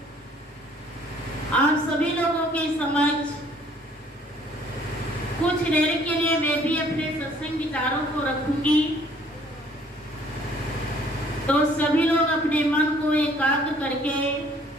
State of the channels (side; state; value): both; normal; correlation 0.59